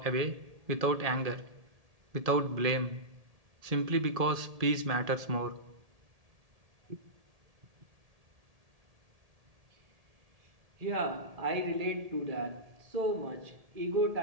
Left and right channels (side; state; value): left; late; 1.8 ms